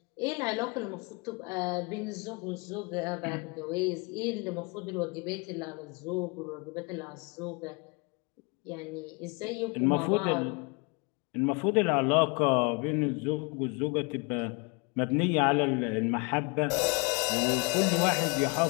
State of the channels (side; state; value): right; quieter; 30.8 dB